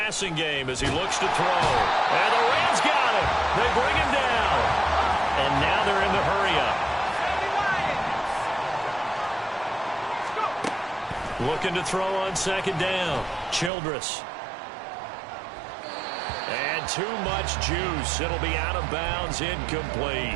game as he looks to throw. And the Rams got him. They bring him down. And now they're in the hurry-up. Looking to throw on 2nd down. Childress. And too much juice. It'll be out of bounds,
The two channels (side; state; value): left; drops out; at 13.7 s